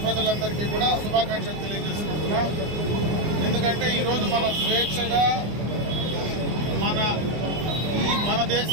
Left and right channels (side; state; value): left; late; 25 ms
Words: ప్రజలందరికీ కూడా శుభాకాంక్షలు తెలియజేసుకుంటున్నాం. ఎందుకంటే ఈరోజు మనం స్వేచ్ఛగా మన